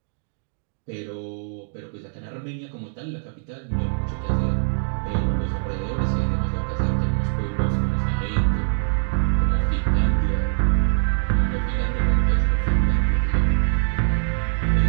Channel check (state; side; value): silent; left; digital silence